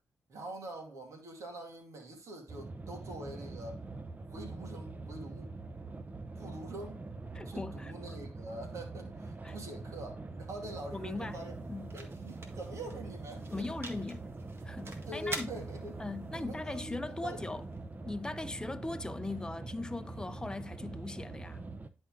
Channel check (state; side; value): normal; both; correlation 0.77